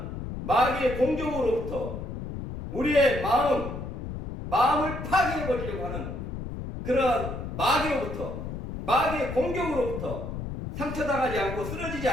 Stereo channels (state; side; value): noise; left; rumble, 7 dB below the sound